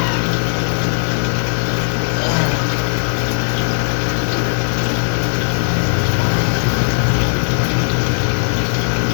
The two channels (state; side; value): silent; right; digital silence